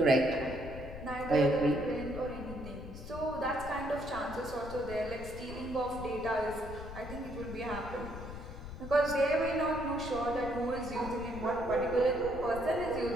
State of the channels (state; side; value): noise; left; rumble, 11 dB below the sound